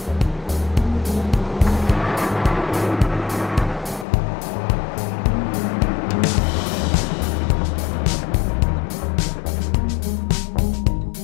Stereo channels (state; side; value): drops out; right; at 4.0 s